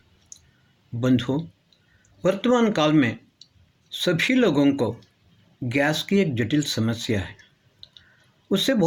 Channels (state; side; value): identical; both; correlation 1.00